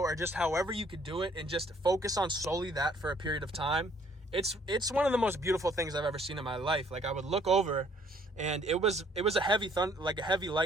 just however you could do it, and just focus on solely that for a period of time. It's one of the most beautiful things I've ever seen in my life. Like, I would look over, and it was a heavy a heavy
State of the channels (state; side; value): normal; both; correlation 0.62